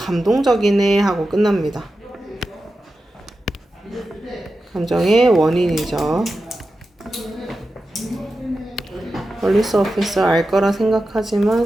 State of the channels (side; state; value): both; normal; correlation 0.91